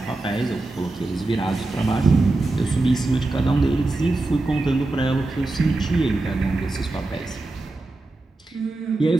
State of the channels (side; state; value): left; quieter; 3.0 dB